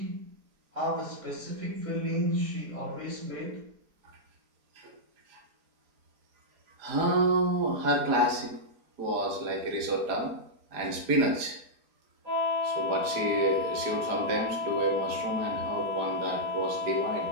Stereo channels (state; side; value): late; left; 4.9 ms